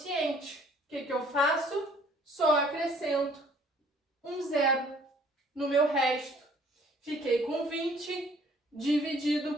O que eu faço? Só acrescento um zero no meu resto. Fiquei com 20 dividido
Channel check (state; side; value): normal; both; correlation 0.58